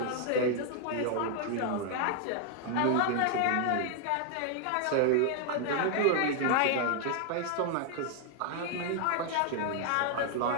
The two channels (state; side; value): different; both; correlation 0.00